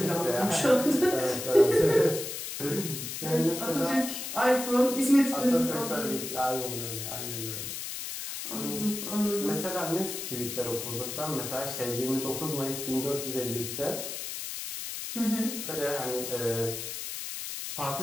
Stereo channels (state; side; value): noise; left; hiss, 6 dB below the sound